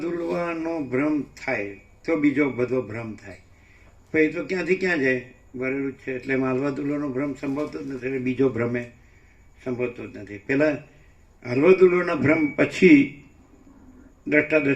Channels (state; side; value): identical; both; correlation 1.00